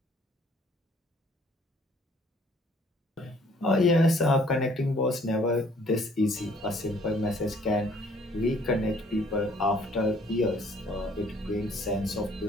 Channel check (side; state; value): both; normal; correlation 0.60